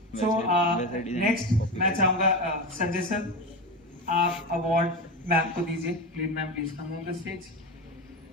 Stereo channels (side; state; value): both; normal; correlation 0.20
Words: सो नेक्स्ट मैं चाहूंगा संजय सर, आप अवार्ड मैम को दीजिए। Please ma'am, please come on the stage.